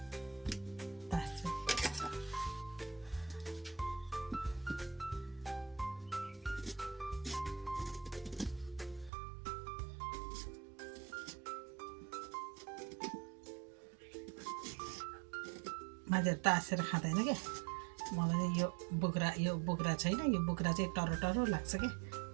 मान्छेहरू तासेर खाँदैन क्या। मलाई चाहिँ यो बोक्रा छैन। यो बोक्रा चाहिँ टरो टरो लाग्छ क्या।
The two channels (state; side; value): drops out; left; at 9.1 s